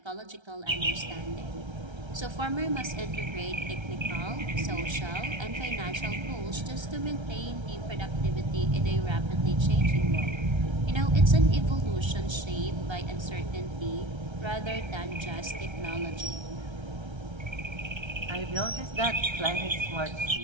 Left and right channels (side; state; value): left; late; 1.3 ms